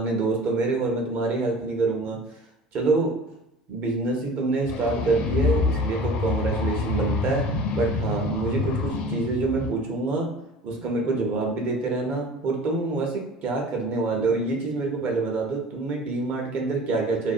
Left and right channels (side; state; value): both; normal; correlation 0.42